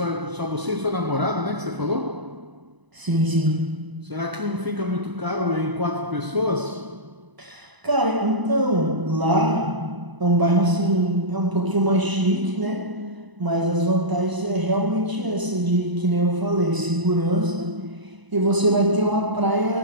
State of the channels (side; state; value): left; late; 1.0 ms